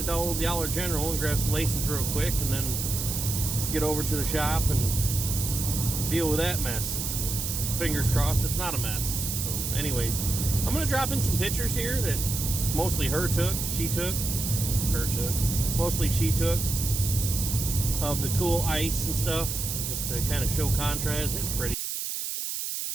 old Dollar General and grab some laces real quick, and then get over to the shop and deal with that mess. Fingers crossed it's not a mess. So anyways, I'm gonna drop in some pictures here that mostly she took of the cool ice and stuff, just to kind of show contrast. It's pretty.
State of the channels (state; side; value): noise; right; hiss, 3 dB below the sound